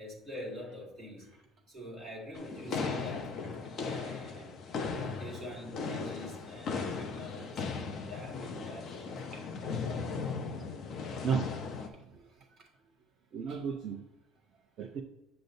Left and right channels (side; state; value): both; normal; correlation 0.51